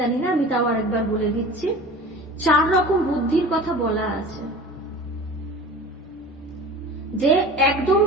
জানি না, আমি তাও আরেকবার বলে দিচ্ছি। 4 রকম বুদ্ধির কথা বলা আছে। যে একদম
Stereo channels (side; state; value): both; normal; correlation 0.38